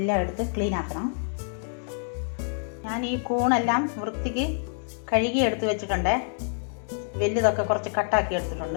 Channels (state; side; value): silent; right; digital silence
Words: എടുത്ത് ക്ലീൻ ആക്കണം. ഞാൻ ഈ കൂണെല്ലാം വൃത്തിക്ക് കഴുകി എടുത്ത് വെച്ചിട്ടുണ്ട്. വലുതൊക്കെ കുറച്ച് കട്ടാക്കി